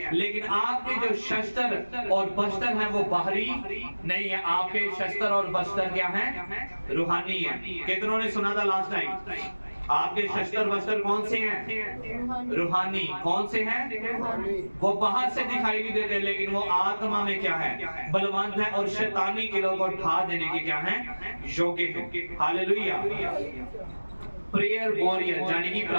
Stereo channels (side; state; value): both; inverted; correlation -1.00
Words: लेकिन आपके जो शस्त्र और बस्त्र हैं वो बाहरी नहीं है। आपके शस्त्र और बस्त्र क्या हैं? रूहानी है। कितनों ने सुना था लास्ट टाइम? आपके शस्त्र वस्त्र कौन से हैं? रूहानी। कौन से हैं? वो बाहर से दिखाई नहीं देते, लेकिन वो आत्मा में क्या है? बलवंत है और शैतानी किलों को ढा देने के क्या हैं? योग्य है। हालेलुया। प्रेयर वॉरियर यानी कि